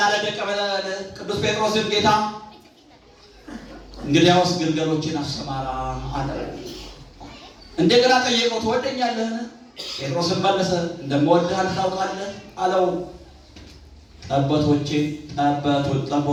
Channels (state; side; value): identical; both; correlation 1.00